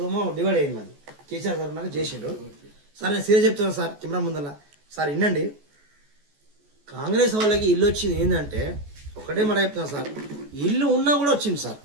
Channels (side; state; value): left; late; 14 ms